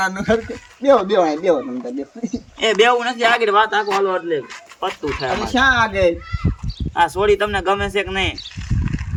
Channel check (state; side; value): identical; both; correlation 1.00